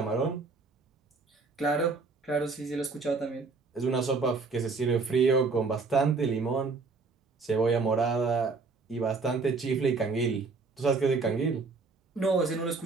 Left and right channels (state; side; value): quieter; left; 4.2 dB